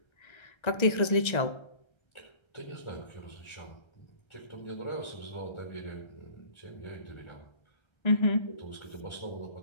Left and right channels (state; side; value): late; right; 1.3 ms